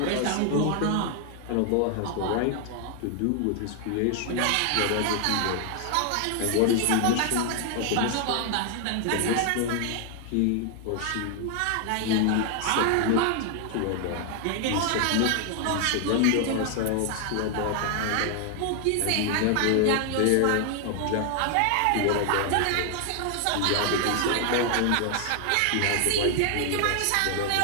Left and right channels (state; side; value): different; both; correlation 0.00